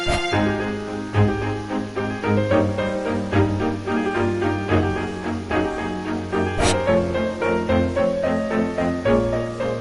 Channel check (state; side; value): identical; both; correlation 1.00